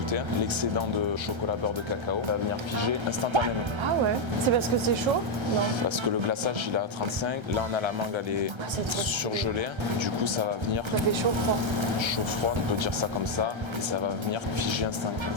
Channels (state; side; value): late; left; 1.3 ms